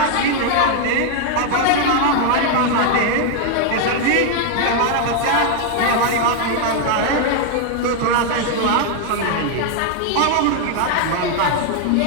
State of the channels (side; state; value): both; different; correlation 0.00